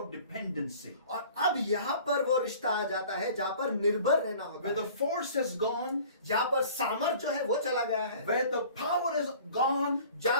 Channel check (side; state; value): both; inverted; correlation -0.48